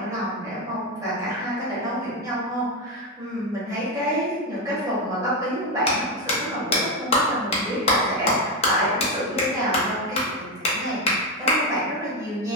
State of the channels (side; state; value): both; normal; correlation 0.09